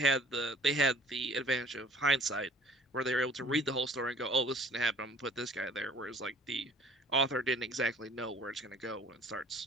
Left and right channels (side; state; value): both; normal; correlation 0.52